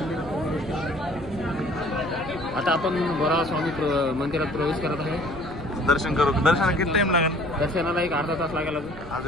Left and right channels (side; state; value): right; noise; rumble, 14 dB below the sound